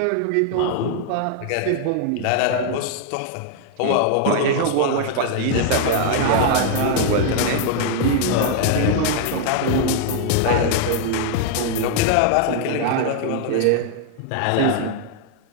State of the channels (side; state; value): both; different; correlation 0.00